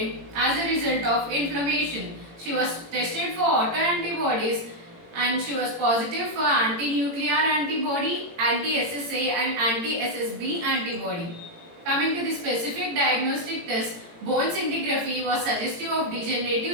as a result of inflammation. She was tested for autoantibodies and she was positive for anti-nuclear antibody, anti-SSA and anti-SSB antibody. Coming to the specific diagnostic test, bone scintigraphy was suggestive of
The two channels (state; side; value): late; left; 18 ms